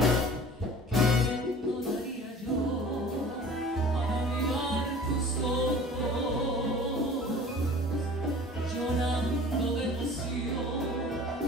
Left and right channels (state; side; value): normal; both; correlation 0.44